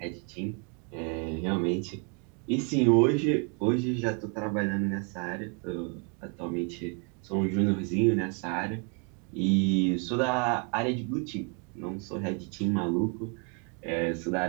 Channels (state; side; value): quieter; left; 37.5 dB